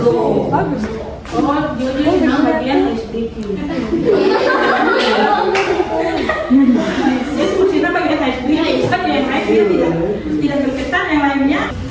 bagus. Oh, dia memang bagian HDQ. Itu kita bagian HDQ. Saja yang lain tidak berkesan, yang lainnya.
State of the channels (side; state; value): both; identical; correlation 1.00